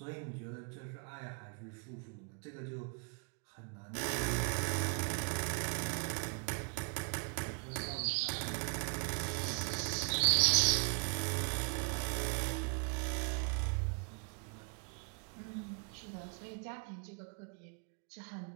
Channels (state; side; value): quieter; left; 35.0 dB